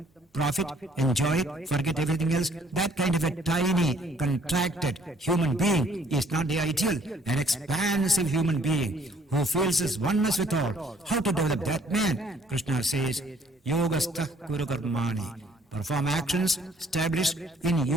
profit, enjoy it, forget everything else. That kind of a tiny, contracted human being is not the ideal. An expansive human being who feels his oneness with all. How to develop that man? Krishna says, Yogastha kuru karmani. Perform actions established in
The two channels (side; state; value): both; normal; correlation 0.61